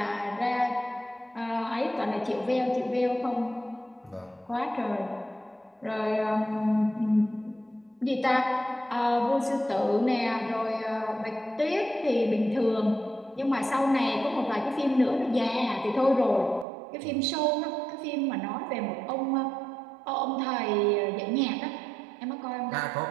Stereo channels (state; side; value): drops out; left; at 16.7 s